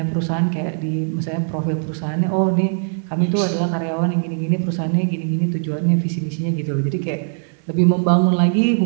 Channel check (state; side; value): silent; left; digital silence